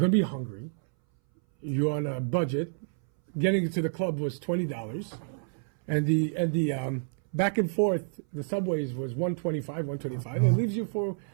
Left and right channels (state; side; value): silent; left; 59 dB below the other